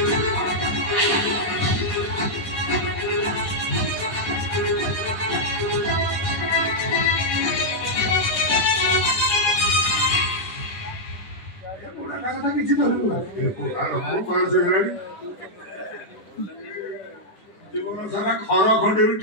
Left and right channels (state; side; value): late; right; 9.4 ms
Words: কথা কিছু ধরবো আর বয়স হয়ে গেলানি জীবন সারা খর খন্ডে